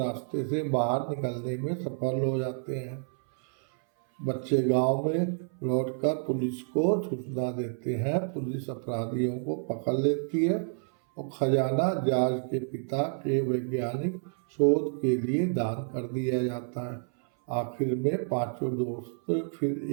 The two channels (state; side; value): silent; left; 58 dB below the other